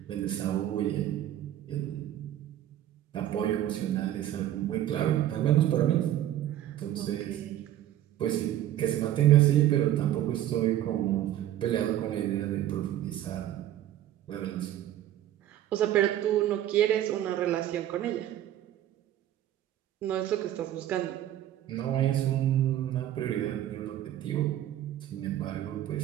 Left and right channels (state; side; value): quieter; left; 12.4 dB